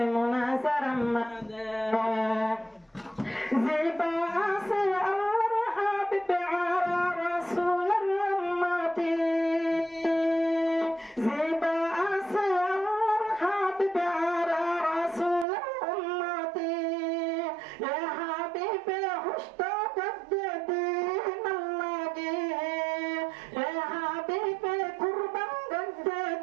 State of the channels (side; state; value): left; drops out; at 15.5 s